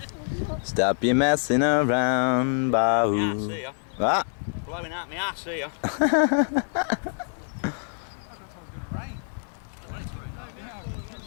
Stop your messing around, Bahoo. See ya. What? Blowing out my ass here.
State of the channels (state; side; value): silent; right; digital silence